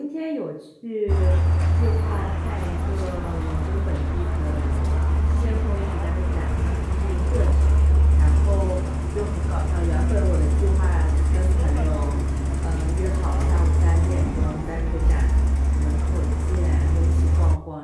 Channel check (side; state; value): both; identical; correlation 1.00